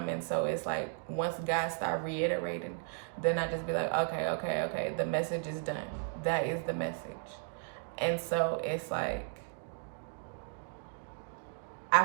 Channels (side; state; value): left; silent; 55 dB below the other